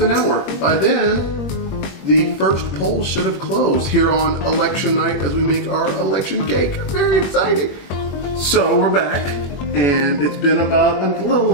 an hour. By then, the first poll should have closed here on election night as we make our election cake. Very exciting. So we're back, and it's been about a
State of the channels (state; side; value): late; right; 21 ms